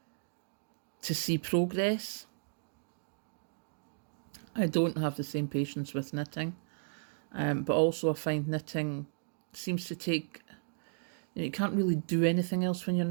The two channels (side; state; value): left; silent; digital silence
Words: to see progress. I don't have the same patience with knitting, but also I find knitting seems to take, you know, you can't really do anything else when you're